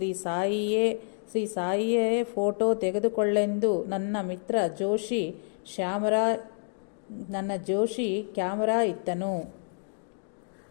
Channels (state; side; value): silent; right; digital silence